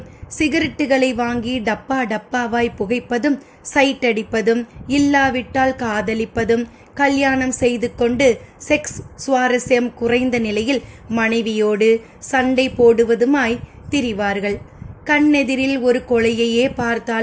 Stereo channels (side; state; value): both; identical; correlation 1.00